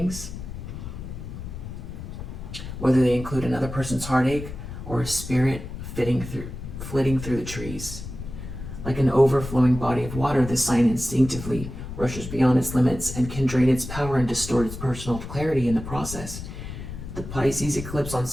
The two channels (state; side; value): noise; left; rumble, 9 dB below the sound